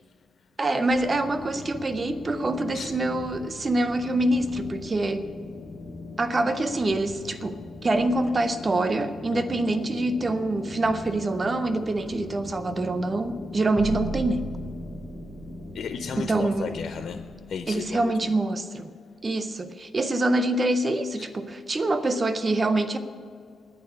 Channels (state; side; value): normal; both; correlation 0.88